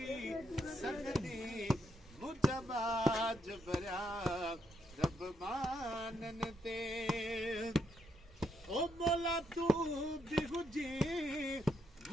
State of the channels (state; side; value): normal; both; correlation 0.78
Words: मुजबाज भरिया रब माननि ते ओ मौला तू बि हुजे